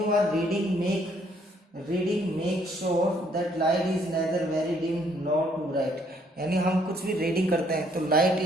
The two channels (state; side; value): normal; both; correlation 0.66